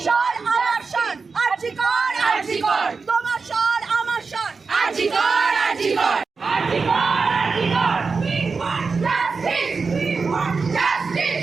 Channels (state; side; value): quieter; left; 4.7 dB